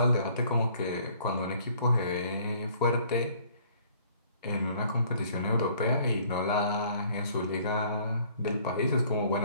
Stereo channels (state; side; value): inverted; both; correlation -0.58